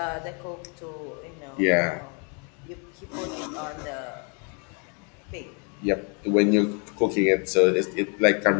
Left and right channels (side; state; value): right; quieter; 36.3 dB